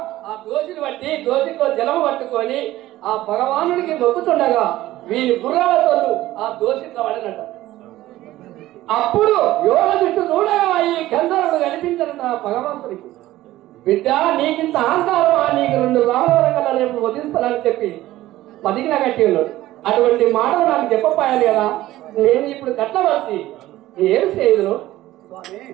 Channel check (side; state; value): left; quieter; 15.7 dB